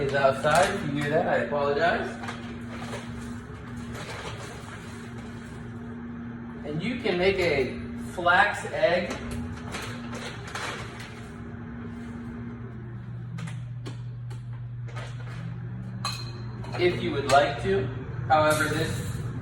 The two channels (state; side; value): identical; both; correlation 1.00